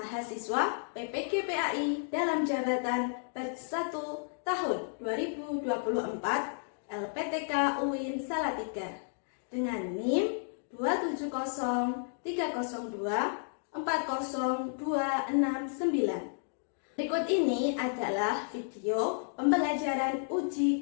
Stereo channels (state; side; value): silent; right; digital silence